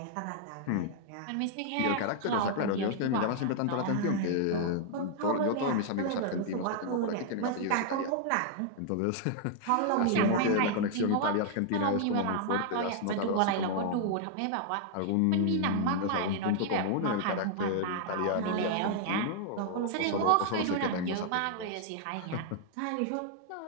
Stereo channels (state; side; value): different; both; correlation -0.01